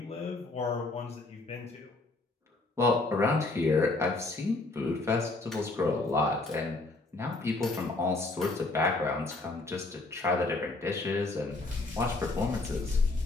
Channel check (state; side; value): quieter; right; 3.2 dB